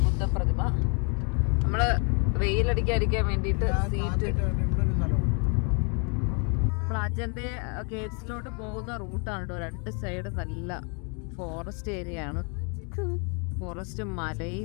ബുദ്ധ പ്രതിമ. നമ്മള് വെയിലടിക്കാതിരിക്കാൻ വേണ്ടിയിട്ട് സീറ്റ്, നമ്മൾ അജന്റെ കേവ്സിലോട്ട് പോകുന്ന റൂട്ടാണ് കേട്ടോ. 2 സൈഡ് നല്ല ഫോറസ്റ്റ് ഏരിയ ആണ്. ഫോറസ്റ്റും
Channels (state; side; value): quieter; right; 37.0 dB